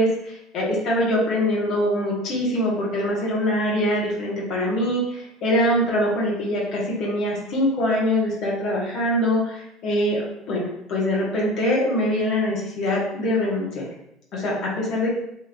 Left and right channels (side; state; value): both; normal; correlation 0.36